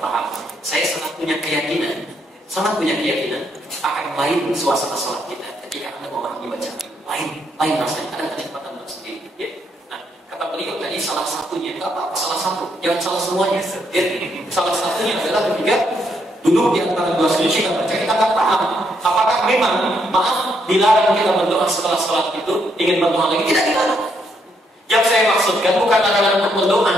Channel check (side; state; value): both; normal; correlation 0.75